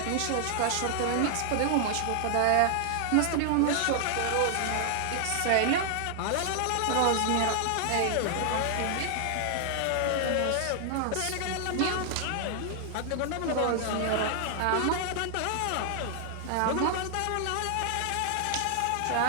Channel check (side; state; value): both; different; correlation 0.00